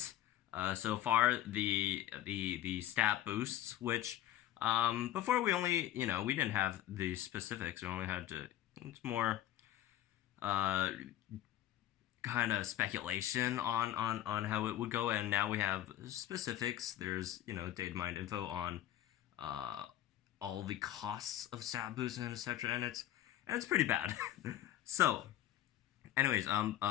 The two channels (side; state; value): right; quieter; 12.8 dB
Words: so far, the stat boosts, which before we only, we didn't have the specifics. We only had to, it's more kind of speculation on how it would go, and now we have specifics. There's data mined info on all the costs of stat boosts and etc. and it's pretty bad. So anyways,